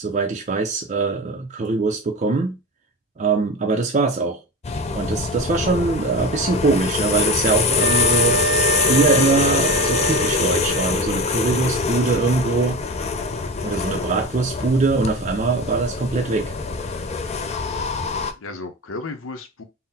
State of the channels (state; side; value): normal; both; correlation 0.28